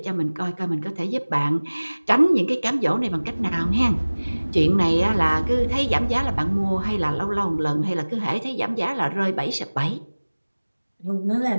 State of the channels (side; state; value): both; inverted; correlation -1.00